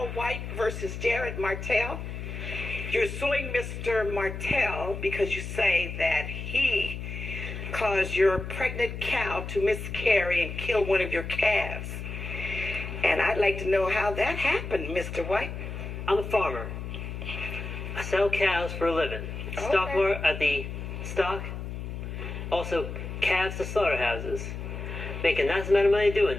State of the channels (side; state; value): left; noise; hum, 7 dB below the sound